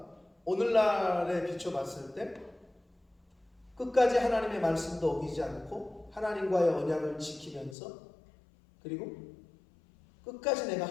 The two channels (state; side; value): drops out; right; at 7.8 s